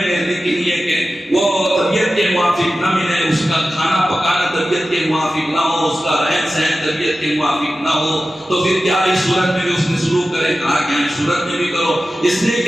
گے، لیکن یہ کہ وہ طبیعت کے موافق نہ ملے، اس کا کھانا پکانا طبیعت کے موافق نہ ہو، اس کا رہن سہن طبیعت کے موافق نہ ہو، تو پھر کیا اس صورت میں بھی اس نے سلوک کرے؟ کہا کہ اس صورت میں بھی کرو، اس لیے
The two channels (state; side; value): normal; both; correlation 0.94